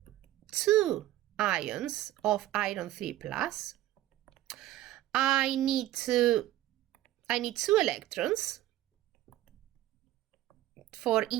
2 ions of iron 3 plus. I need 2 electrons for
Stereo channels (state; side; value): quieter; left; 14.6 dB